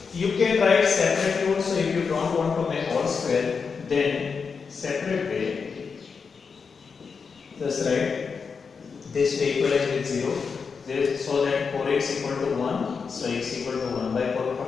you can write separately also if you don't want to make whole square. Then separate way. Just write this to equalize with 0. So that 4x equal to 1. So x equal to 1 by 4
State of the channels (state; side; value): quieter; right; 5.5 dB